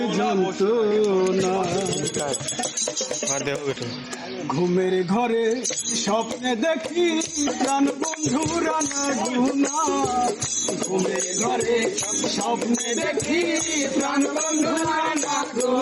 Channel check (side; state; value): both; identical; correlation 1.00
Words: যন্ত্রণা। ঘুমের ঘরে স্বপ্নে দেখি প্রাণ বন্ধুরা না গুনা, ঘুমের ঘরে স্বপ্নে দেখি প্রাণ বন্ধুরা না